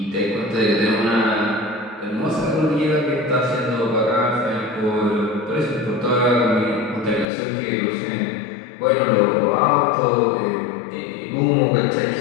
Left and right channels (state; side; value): drops out; right; at 7.2 s